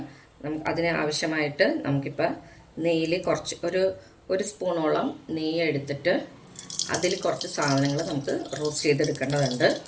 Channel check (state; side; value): identical; both; correlation 1.00